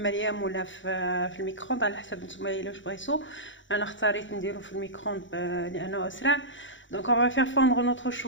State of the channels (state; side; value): late; right; 0.55 ms